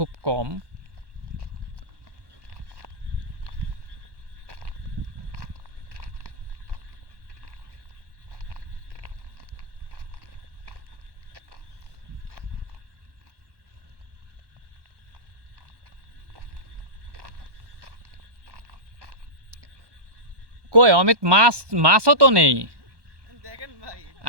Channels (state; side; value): late; left; 1.1 ms